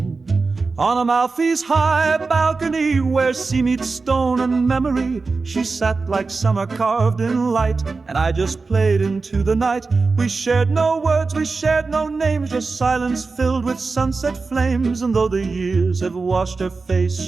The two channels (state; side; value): quieter; left; 4.1 dB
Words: On Amalfi's high balcony, where sea meets stone and memory, she sat like summer carved in light, and I just played into the night. We shared no words, we shared no names, just silence filled with sunset flames. And though the years have washed her face,